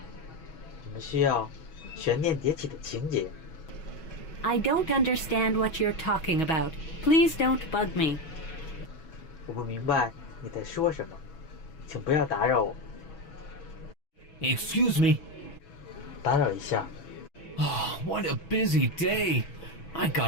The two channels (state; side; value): late; right; 6.2 ms